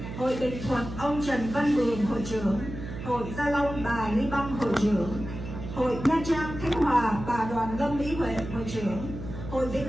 Hội Bình Thuận ông Trần Văn Mường hội trưởng, Hội Gia Long bà Lý Băng hội trưởng, Hội Nha Trang Khánh Hòa bà Đoàn Lâm Mỹ Huệ hội trưởng, Hội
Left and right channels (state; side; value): noise; right; hum, 9 dB below the sound